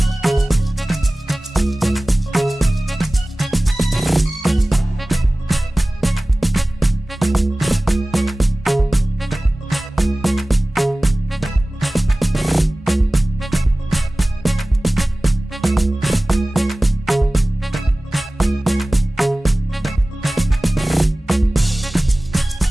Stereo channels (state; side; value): normal; both; correlation 0.98